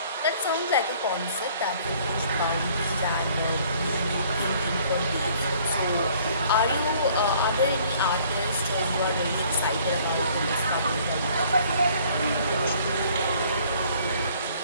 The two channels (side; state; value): both; inverted; correlation -0.57